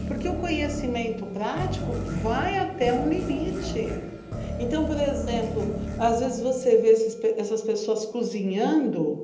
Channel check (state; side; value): identical; both; correlation 1.00